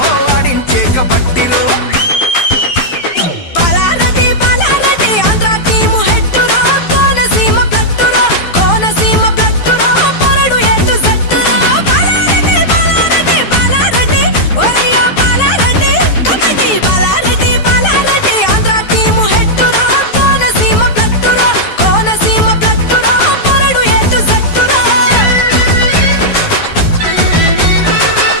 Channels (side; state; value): right; late; 12 ms